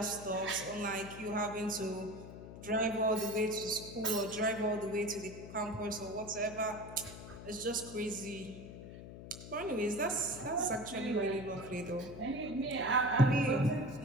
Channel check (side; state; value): left; noise; hum, 12 dB below the sound